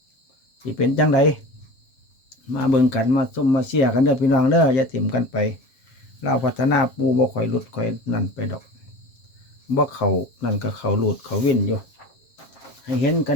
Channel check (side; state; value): right; late; 7.3 ms